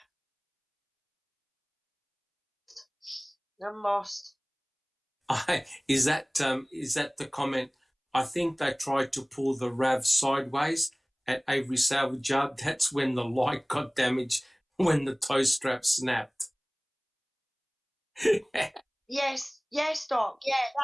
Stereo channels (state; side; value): identical; both; correlation 1.00